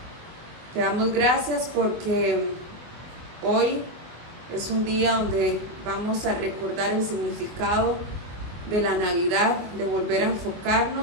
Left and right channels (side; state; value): left; late; 24 ms